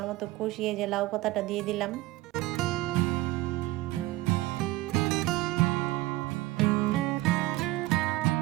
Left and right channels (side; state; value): left; quieter; 18.2 dB